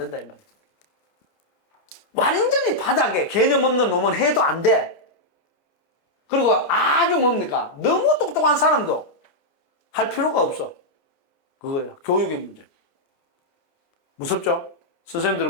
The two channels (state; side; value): late; right; 29 ms